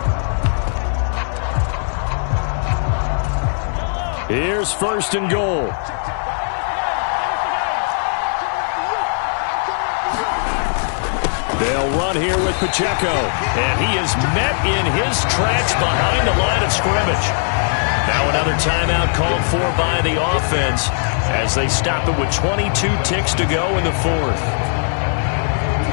Here's 1st and goal. They'll run here with Pacheco. And he is met in his tracks behind the line of scrimmage. Now another timeout called for by the offense as they stop it with 22 ticks to go in the 4th.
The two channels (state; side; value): silent; right; 67 dB below the other